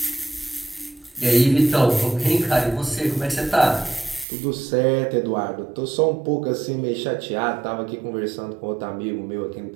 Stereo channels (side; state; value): left; drops out; at 4.2 s